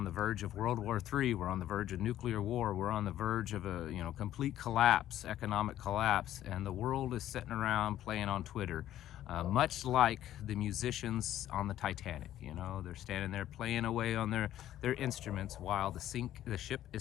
the verge of World War III. We're on the verge of nuclear war. We're on the verge of a complete collapse, economic collapse, and the world is sitting around playing on Twitter, much like the musicians on the Titanic. They're standing there playing away on their instruments while the ship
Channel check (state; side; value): quieter; right; 12.6 dB